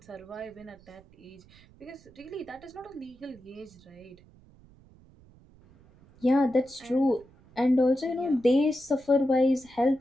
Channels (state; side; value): noise; right; rumble, 26 dB below the sound